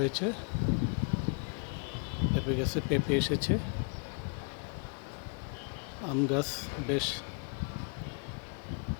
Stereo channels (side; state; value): right; quieter; 38.4 dB